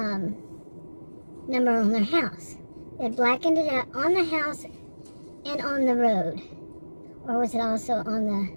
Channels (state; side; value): inverted; both; correlation -1.00